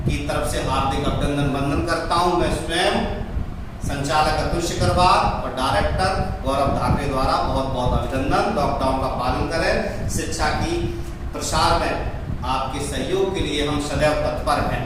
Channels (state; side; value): identical; both; correlation 1.00